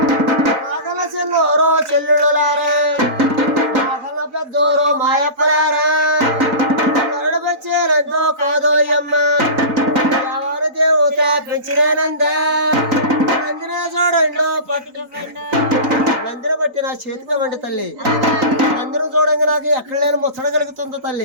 నాగల చిన్నోరో చెల్లుడులారా నాగల పెద్దోరో మాయప్పలారా నరుడు వచ్చేనందో కాదోయమ్మ ఎవరు దేవత పెంచినేనందా నందినే చూడండి పట్టు నందిని బట్టి నా చేతికి వండి తల్లి నందిని చూడంగా నాకు ఎక్కడ లేని ముచ్చట కలుగుతుందో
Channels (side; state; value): left; late; 3.9 ms